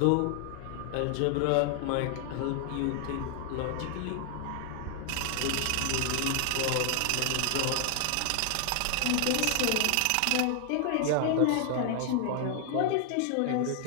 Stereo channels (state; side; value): different; both; correlation 0.00